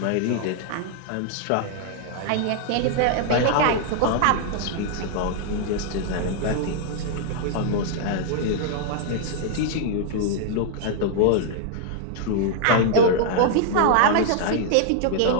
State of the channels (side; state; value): both; different; correlation -0.01